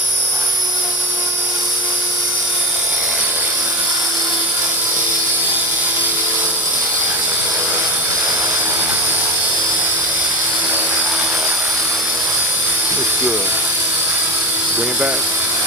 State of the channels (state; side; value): normal; both; correlation 0.22